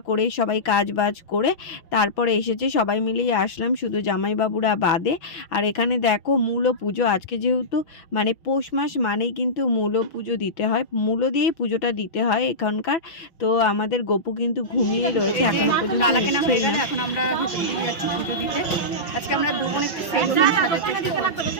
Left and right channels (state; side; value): late; right; 5.8 ms